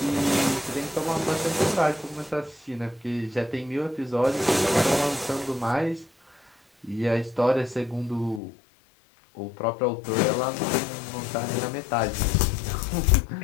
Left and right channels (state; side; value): drops out; right; at 8.4 s